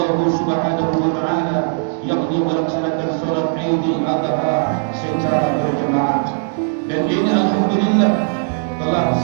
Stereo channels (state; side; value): silent; left; digital silence